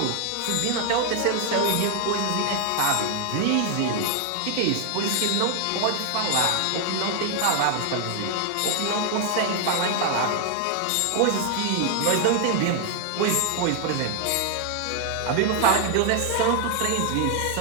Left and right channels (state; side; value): different; both; correlation 0.00